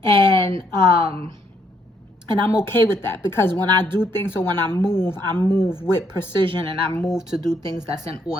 And I'm okay with that, because when I do things, or when I move with precision, and I move to do things that's in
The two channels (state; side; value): normal; both; correlation 0.72